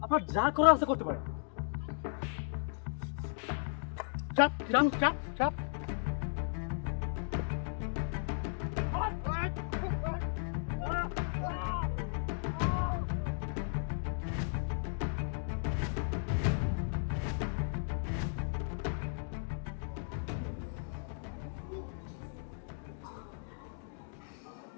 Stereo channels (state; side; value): silent; right; digital silence